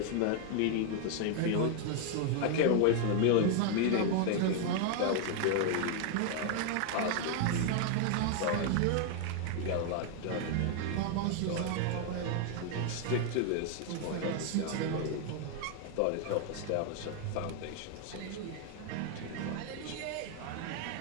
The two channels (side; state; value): both; different; correlation 0.00